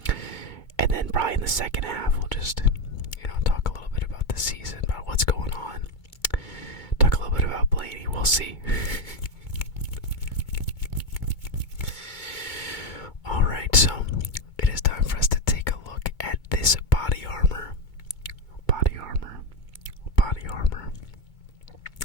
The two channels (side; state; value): right; late; 2.2 ms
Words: and then probably in the second half we'll just, talk a little bit about the season, about what's going on, talk a little bit about Blaney. We'll see. Alright, so it is time for us to take a look at this body armor